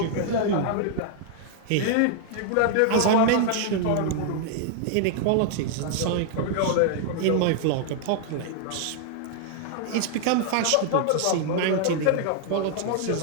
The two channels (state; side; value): different; both; correlation 0.00